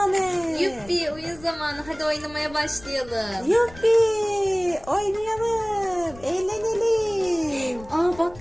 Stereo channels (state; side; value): noise; left; rumble, 20 dB below the sound